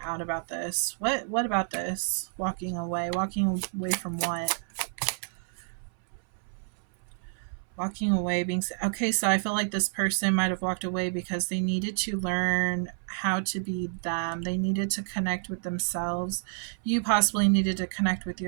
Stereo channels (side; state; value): left; silent; 59 dB below the other